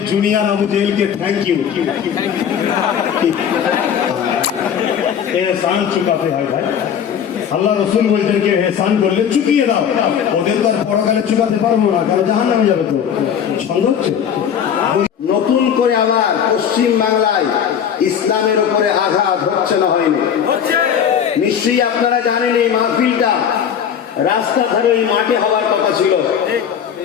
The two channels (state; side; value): quieter; right; 8.3 dB